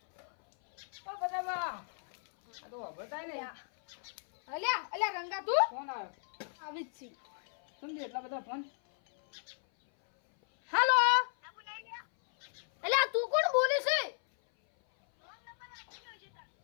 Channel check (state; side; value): silent; right; 55 dB below the other